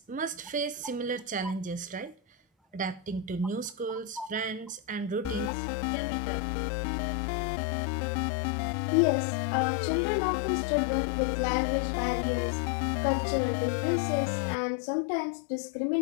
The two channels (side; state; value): right; drops out; at 5.5 s